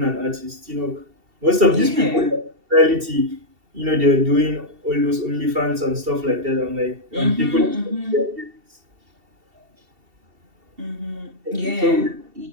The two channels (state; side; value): late; left; 2.7 ms